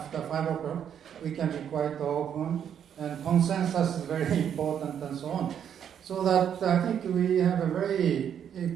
5 o'clock, we can be quite open, and consensus is very important, and so on. So that I think we have a very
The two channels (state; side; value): quieter; left; 8.8 dB